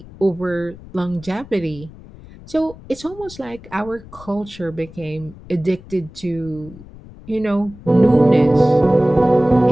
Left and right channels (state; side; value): noise; left; rumble, 19 dB below the sound